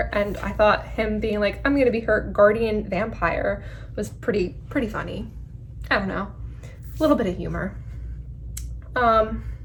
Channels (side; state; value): both; identical; correlation 1.00